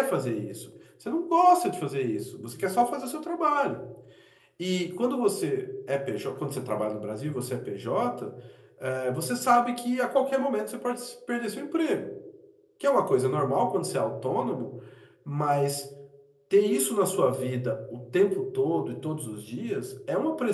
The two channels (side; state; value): both; identical; correlation 1.00